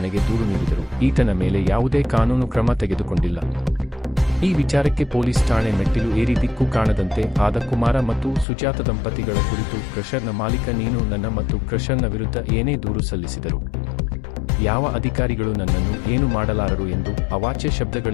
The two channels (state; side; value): drops out; right; at 8.5 s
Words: ದೂರು ನೀಡಿದರು. ಈತನ ಮೇಲೆ ಯಾವುದೇ ಕಾನೂನು ಕ್ರಮ ತೆಗೆದುಕೊಂಡಿಲ್ಲ. ಈ ವಿಚಾರಕ್ಕೆ ಪೊಲೀಸ್ ಠಾಣೆ ಮೆಟ್ಟಿಲು ಏರಿ ದಿಕ್ಕು ಕಾಣದಂತೆ ಆದ ಕುಮಾರ ಮತ್ತು ಸುಜಾತ ದಂಪತಿಗಳ ಕುರಿತು ಕ್ರಷರ್ನ ಮಾಲೀಕ ನೀನು ನನ್ನ ಮತ್ತು ಕ್ರಷರ್ನ ವಿರುದ್ಧ ಏನೇ ದೂರು ಸಲ್ಲಿಸಿದರು ಯಾವ ಅಧಿಕಾರಿಗಳು ನನ್ನನ್ನು ಏನು ಮಾಡಲಾರರು ಎಂದು ಅವಾಚ್ಯ